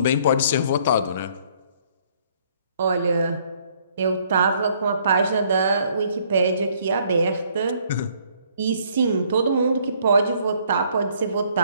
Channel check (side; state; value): both; inverted; correlation -0.63